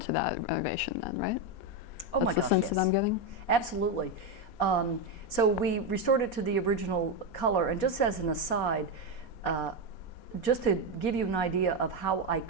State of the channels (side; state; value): right; late; 4.2 ms